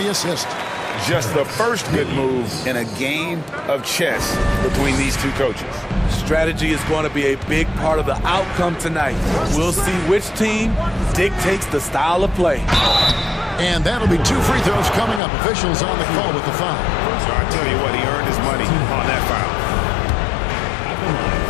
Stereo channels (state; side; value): drops out; right; at 15.2 s